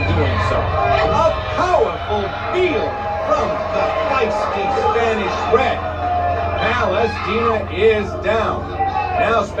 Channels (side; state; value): both; identical; correlation 1.00